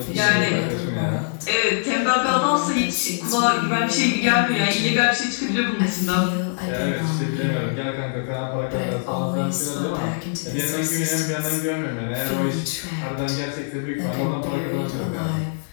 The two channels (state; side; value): silent; right; digital silence